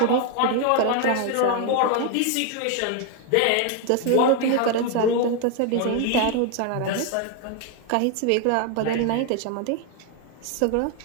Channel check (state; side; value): different; both; correlation 0.01